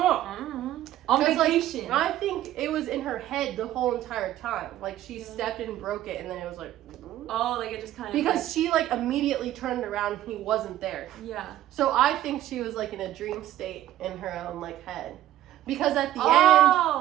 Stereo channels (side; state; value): left; quieter; 13.3 dB